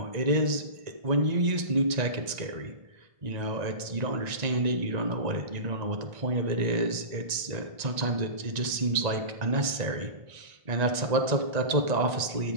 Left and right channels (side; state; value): left; late; 1.9 ms